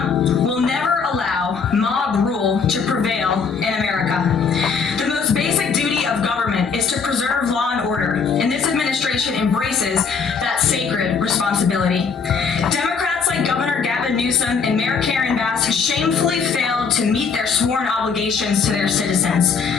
will never allow mob rule to prevail in America. The most basic duty of government is to preserve law and order, and this administration embraces that sacred responsibility. Democrats like Governor Gavin Newsom and Mayor Karen Bass shamefully failed to meet their sworn obligations to their citizens.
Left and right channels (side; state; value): right; quieter; 5.6 dB